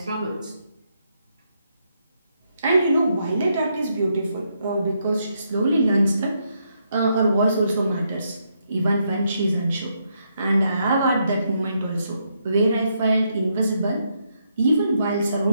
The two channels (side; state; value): both; inverted; correlation -0.78